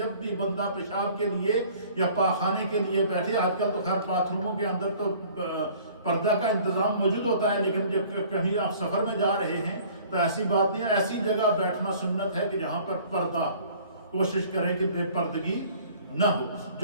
بھی بندہ پیشاب کے لیے یا پاخانے کے لیے بیٹھے, آج کل تو خیر باتھ روموں کے اندر تو پردہ کا انتظام موجود ہوتا ہے, لیکن جب کہیں آپ سفر میں جا رہے ہیں تو ایسی بات نہیں, ایسی جگہ بیٹھنا سنت ہے کہ جہاں پر پردہ, کوشش کریں کہ بے پردگی نہ ہو.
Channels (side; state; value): both; inverted; correlation -0.52